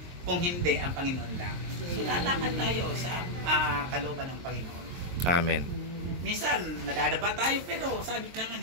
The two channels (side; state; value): left; late; 23 ms